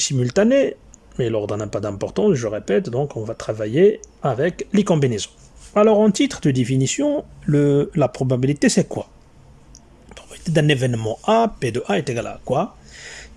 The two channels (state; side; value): identical; both; correlation 1.00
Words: mais l'ordre n'a pas d'importance, je répète, donc on va travailler avec les combinaisons. Alors en titre de définition, la probabilité c'est quoi? La probabilité d'un événement A, P de A est égal à quoi?